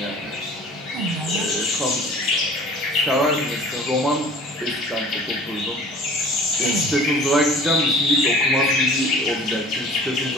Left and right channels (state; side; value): normal; both; correlation 0.46